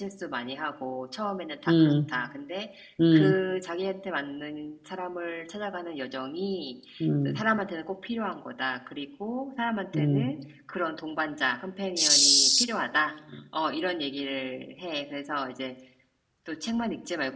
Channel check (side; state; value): both; identical; correlation 1.00